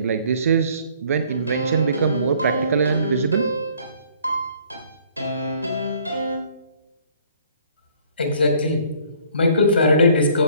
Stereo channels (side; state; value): both; inverted; correlation -0.59